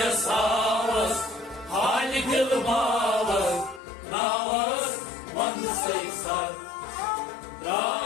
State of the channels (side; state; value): right; drops out; at 3.8 s